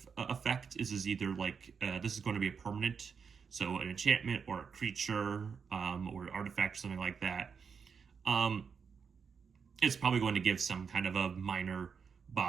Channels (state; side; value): quieter; left; 6.1 dB